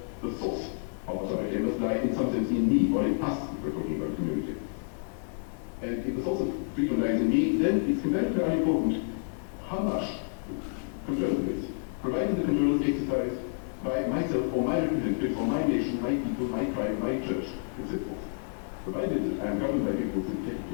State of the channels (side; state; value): right; silent; digital silence